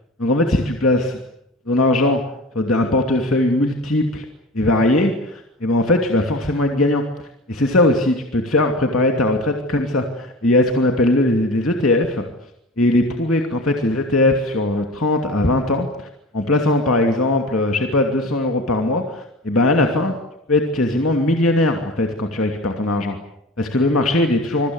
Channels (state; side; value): normal; both; correlation 0.34